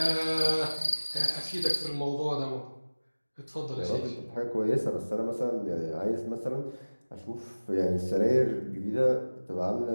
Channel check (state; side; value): inverted; both; correlation -1.00